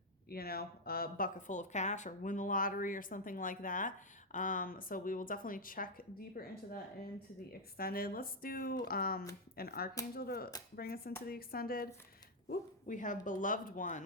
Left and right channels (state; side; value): normal; both; correlation 0.00